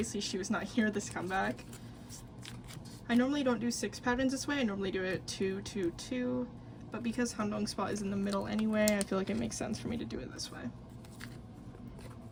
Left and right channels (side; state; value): both; identical; correlation 1.00